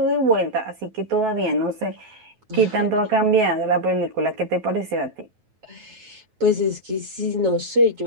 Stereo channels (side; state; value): left; late; 9.3 ms